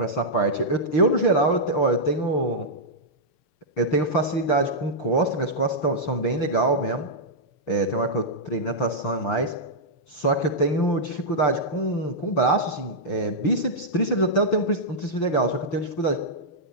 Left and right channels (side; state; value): right; late; 6.7 ms